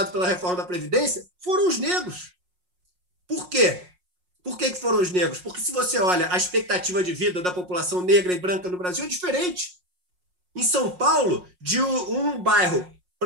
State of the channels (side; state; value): left; late; 5.5 ms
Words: pela reforma da Previdência foram os negros. Por quê? Por que foram os negros? Porque se você olha a expectativa de vida da população negra e branca no Brasil é diferente. Em São Paulo, de um bairro